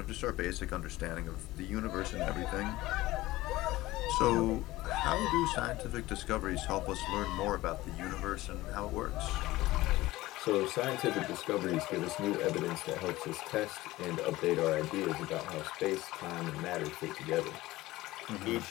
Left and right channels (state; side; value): quieter; right; 18.0 dB